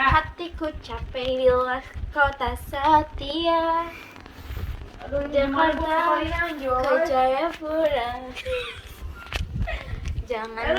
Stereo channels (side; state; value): both; identical; correlation 1.00